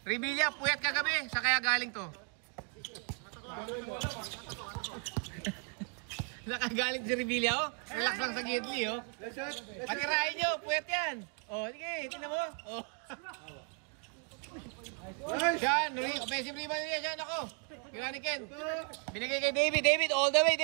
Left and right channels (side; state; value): left; quieter; 40.0 dB